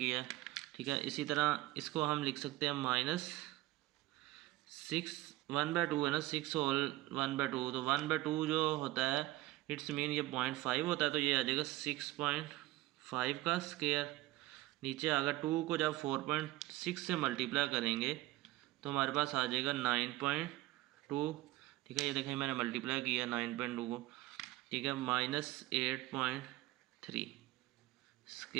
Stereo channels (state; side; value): quieter; left; 17.7 dB